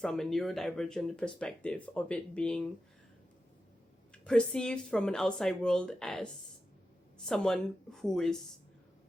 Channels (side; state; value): both; normal; correlation 0.91